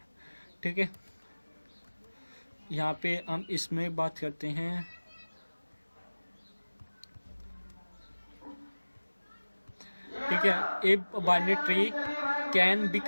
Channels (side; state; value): both; inverted; correlation -1.00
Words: ठीक है, यहाँ पे हम इसमें बात करते हैं ठीक है, a binary tree can be